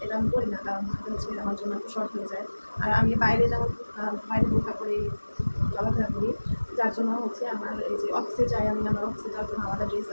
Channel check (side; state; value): both; inverted; correlation -1.00